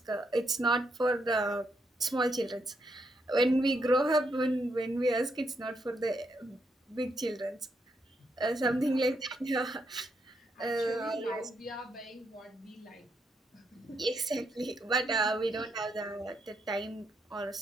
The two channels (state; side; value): normal; both; correlation 0.78